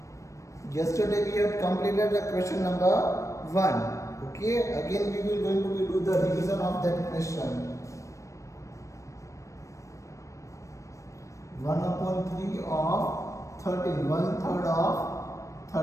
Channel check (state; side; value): late; right; 0.15 ms